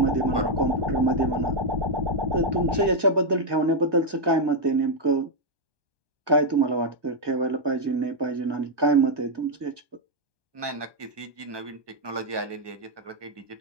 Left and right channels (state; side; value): late; left; 1.2 ms